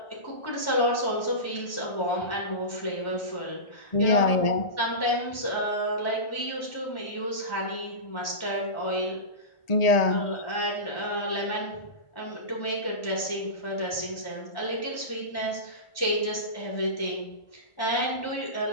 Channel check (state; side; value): late; right; 1.4 ms